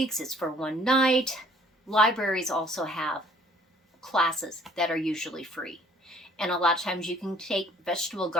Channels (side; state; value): both; normal; correlation 0.57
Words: it's for one night. Libraries also have classes that are usually free. And a lot of times you can take vegetable